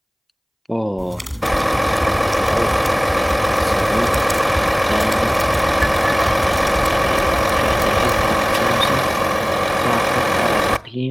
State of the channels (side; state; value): both; identical; correlation 1.00